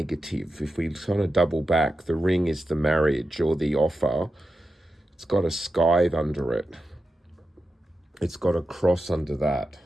If we kind of double back, the ring is the marriage or the offer. It's got a scythe under it. It's got a cross under that.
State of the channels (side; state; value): both; normal; correlation 0.90